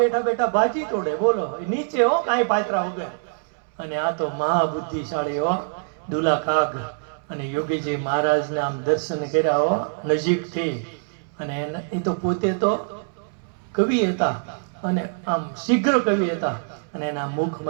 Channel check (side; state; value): left; silent; 63 dB below the other